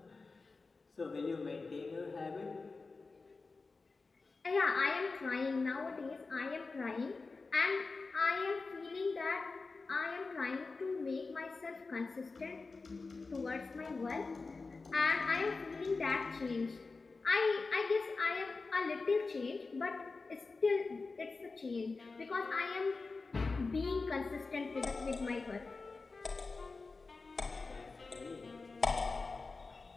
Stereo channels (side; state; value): right; quieter; 4.0 dB